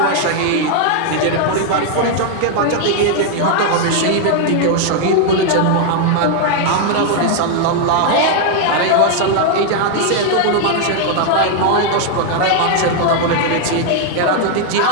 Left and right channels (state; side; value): different; both; correlation 0.00